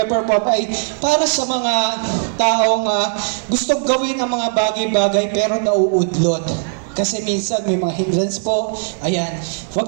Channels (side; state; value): left; silent; 67 dB below the other